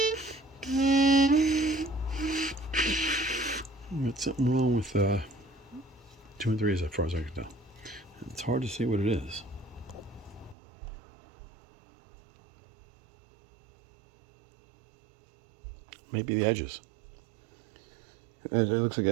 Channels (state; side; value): drops out; left; at 10.6 s